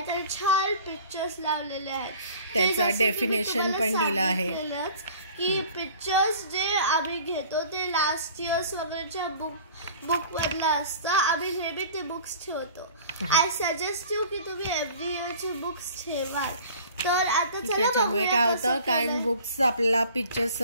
आणि छान पिक्चर्स लावलेले आहेत. त्याचा डेफिनेशन पण दिला आहे की पिक्चर्स जे आम्ही घेतो ते लास्ट इयर्स वगैरेच्या बुक मधलं असतं. आम्ही नेहमी ते बुक्स ठेवतो. आय सजेस्ट यू की तुम्ही एव्हरी इयरची बुक्स ठेवा. तर आता त्याच्यामुळे काय होतं, कारण बुक्स आपल्याला पिक्चर्स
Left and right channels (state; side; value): inverted; both; correlation -0.46